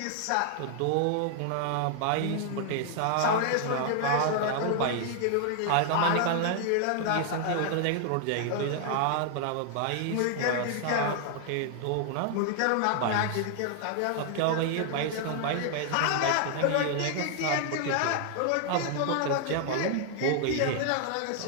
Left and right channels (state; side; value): different; both; correlation 0.00